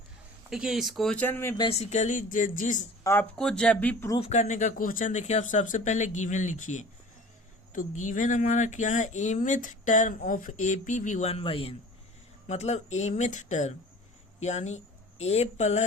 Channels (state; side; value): normal; both; correlation 0.42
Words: देखिए इस question में basically जिस आपको जब भी proof करने का question देखिए आप सबसे पहले गिवन लिखिए। तो गिवन हमारा क्या है, mth term of AP be 1/n, मतलब एमिथ टर्म यानी a